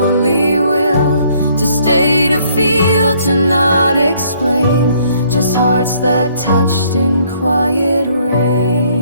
will. To stay, to feel, to not explain. Just hearts that touched in quiet rain.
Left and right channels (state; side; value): inverted; both; correlation -0.64